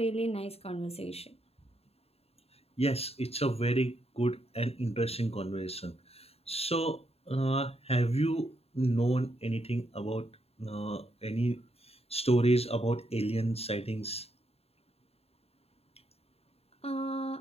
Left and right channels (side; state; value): right; late; 0.29 ms